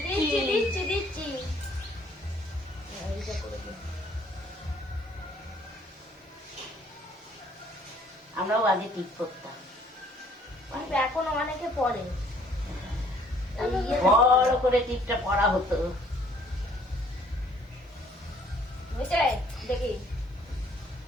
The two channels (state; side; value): normal; both; correlation 0.61